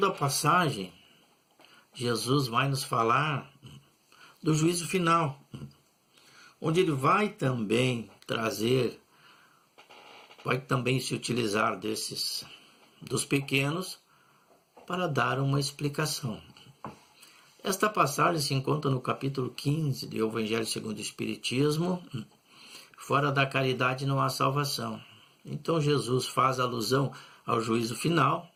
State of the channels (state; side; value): identical; both; correlation 1.00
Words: passagem, Jesus vai nos falar do juízo final, onde ele vai também se utilizar dos pequenos para dar uma explicação. Esta passagem se encontra no capítulo 15 do Evangelho segundo o Espiritismo. Fora da caridade não há salvação. Então Jesus faz alusão ao juízo final,